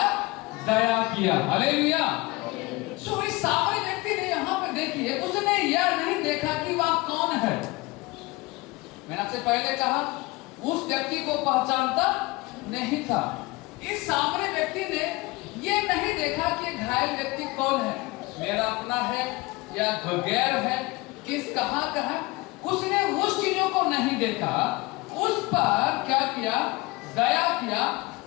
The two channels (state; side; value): quieter; right; 22.9 dB